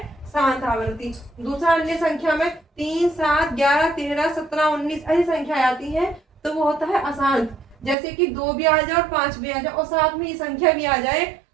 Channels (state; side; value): drops out; left; at 8.0 s